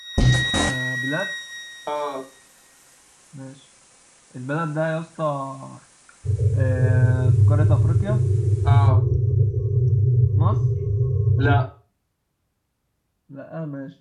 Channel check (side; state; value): both; identical; correlation 1.00